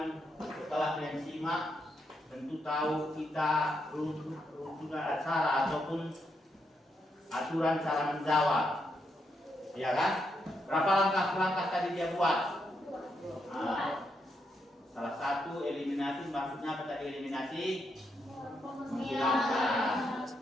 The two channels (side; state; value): both; normal; correlation 0.80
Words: setelah kalian simak tentu tahu kita rujukan acara ataupun aturan cara menjawab, ya kan? Berapa langkah tadi dia buat? Nah, salah satu eliminasi, maksudnya apa tadi eliminasi? Menghilangkan